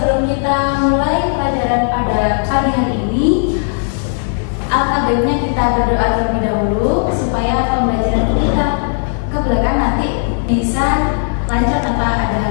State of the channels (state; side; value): silent; right; digital silence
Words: kita mulai pelajaran pada pagi hari ini, alangkah baiknya kita berdoa terlebih dahulu supaya pembelajaran kita ke belakang nanti bisa lancar tanpa ada